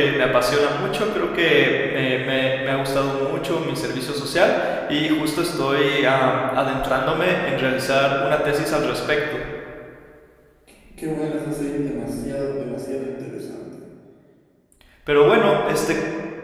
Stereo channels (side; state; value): both; identical; correlation 1.00